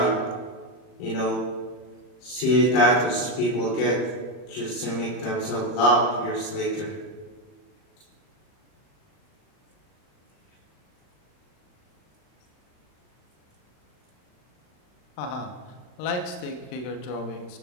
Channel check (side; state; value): right; late; 39 ms